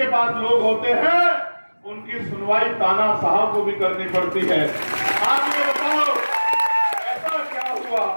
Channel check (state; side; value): inverted; both; correlation -1.00